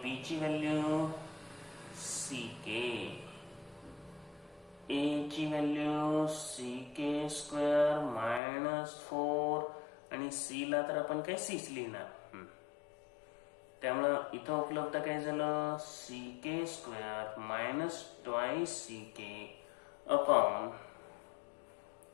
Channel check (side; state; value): right; drops out; at 8.4 s